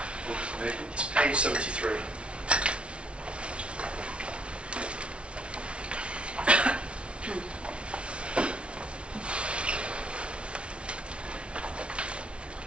It's page 73.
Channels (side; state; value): left; late; 0.059 ms